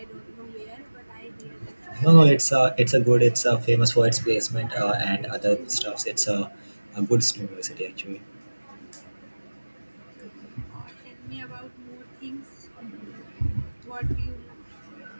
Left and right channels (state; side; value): inverted; both; correlation -1.00